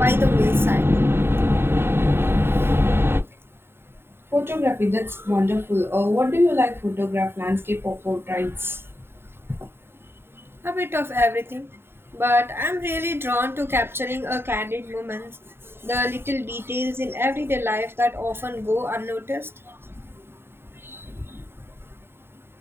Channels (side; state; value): left; late; 0.11 ms